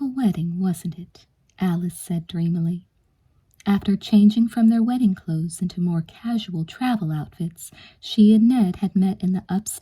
wedding, wasn't it?" Alice said dreamily. After changing from their wedding clothes into more casual travel outfits, she and Ned had met in the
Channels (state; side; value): identical; both; correlation 1.00